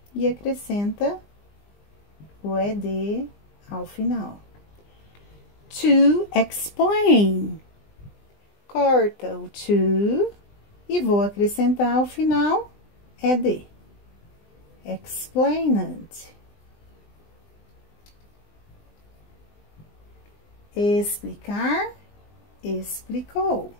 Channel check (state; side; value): late; right; 20 ms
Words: e acrescenta o ED ao final. To explain. Corta o to e vou acrescentar ao final ED. Explained. Explicar, explicou.